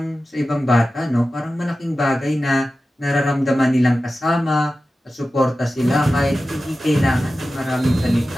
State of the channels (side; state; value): both; normal; correlation 0.94